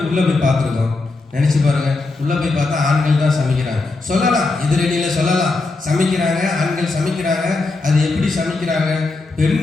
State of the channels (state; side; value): quieter; right; 3.5 dB